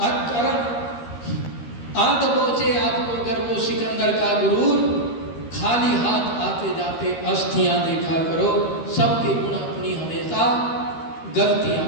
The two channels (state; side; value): late; right; 13 ms